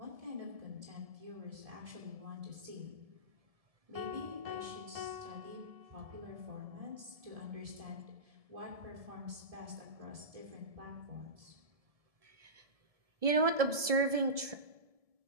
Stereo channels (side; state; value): left; late; 1.7 ms